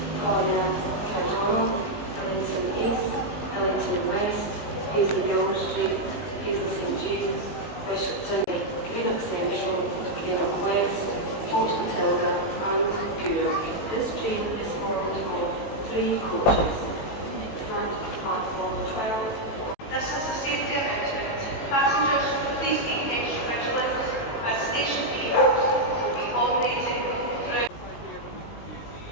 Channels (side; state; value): right; late; 18 ms